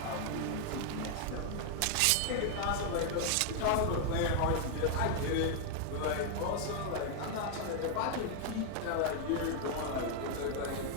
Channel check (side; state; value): both; different; correlation 0.00